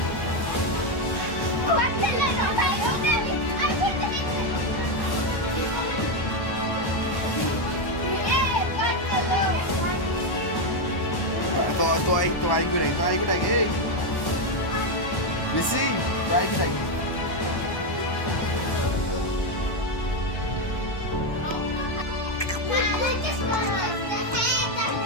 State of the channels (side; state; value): right; late; 1.1 ms